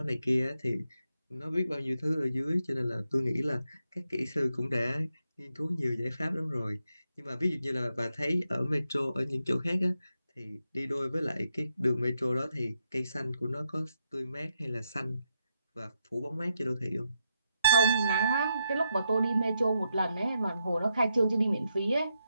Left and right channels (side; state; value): both; inverted; correlation -0.82